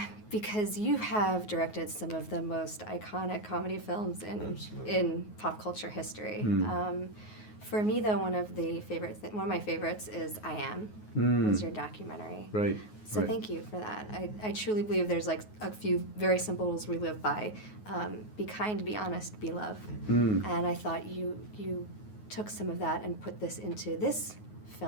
Because you have directed some of the most iconic comedy films in pop culture history. For me, though, one of my favorites is I Am, was your documentary. Right. So thank you for that. I truly believe there's like a few very simple rules we live by. Be kind, be honest, be love. And I thought you took some of that and put this into this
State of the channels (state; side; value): late; right; 9.4 ms